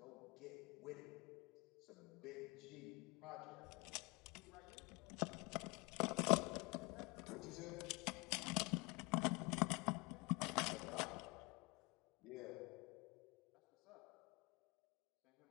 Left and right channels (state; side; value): quieter; right; 27.1 dB